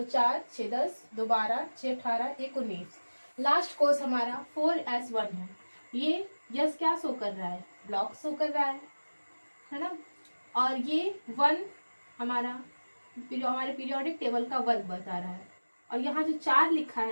4 6 10 2 12 6 18 1 19। Last course हमारा 4s1 है। ये यस क्या शो कर रहा है, ब्लॉक शो कर रहा है ना। और ये 1 हमारा हमारे पीरियोडिक टेबल का वर्ग बता रहा है। और यहाँ जो 4 लिखा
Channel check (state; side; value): inverted; both; correlation -1.00